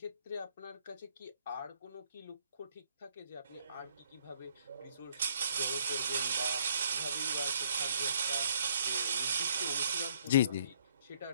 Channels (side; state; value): both; inverted; correlation -0.66